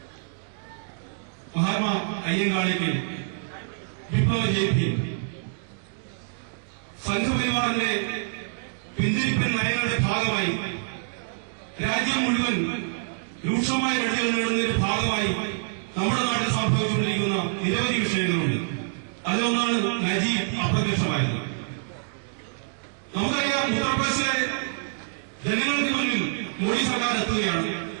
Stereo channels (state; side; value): silent; left; digital silence